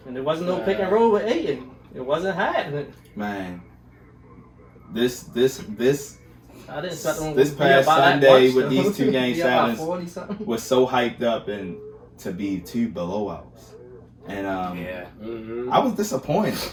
And there wasn't no pick and roll with Ayton. It wasn't happening. Man, this I didn't expect them this to be past about that Sunday much, with though. these 2 game Be about 7s 40 something. was so hyped up and to be 2 blowouts. And Yeah. Mm-hmm. I was disappointed.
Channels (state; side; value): identical; both; correlation 1.00